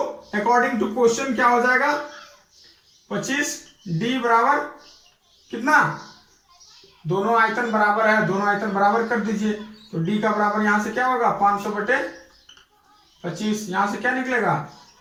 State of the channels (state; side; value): identical; both; correlation 1.00